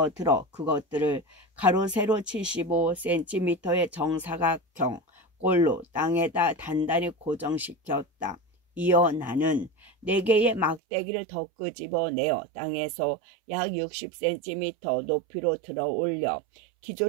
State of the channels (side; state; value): left; drops out; at 10.8 s